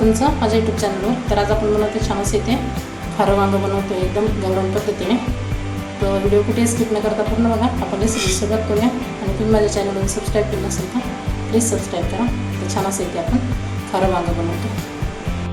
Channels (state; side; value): identical; both; correlation 1.00